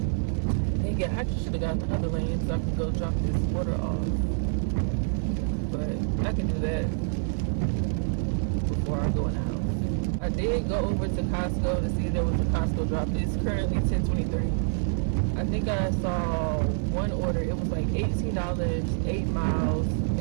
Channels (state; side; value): silent; left; 57 dB below the other